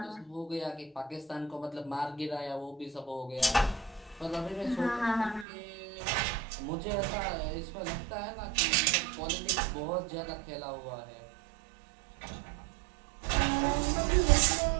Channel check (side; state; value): left; drops out; at 5.5 s